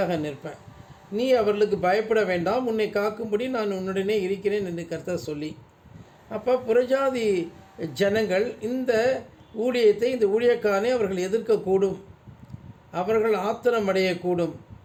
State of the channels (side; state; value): both; identical; correlation 1.00